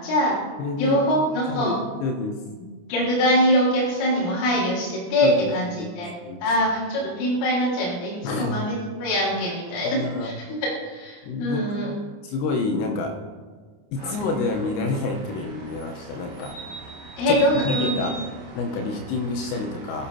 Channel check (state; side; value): late; right; 29 ms